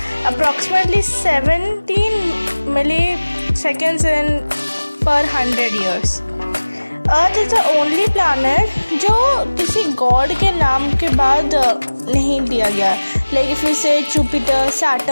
अप्रॉक्सीमेटली 17 मिली सेकेंड्स इन पर 100 years. Earth is the only planet जो किसी गॉड के नाम के बाद नहीं दिया गया। लाइक इफ यू से Jupiter,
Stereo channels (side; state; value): both; inverted; correlation -1.00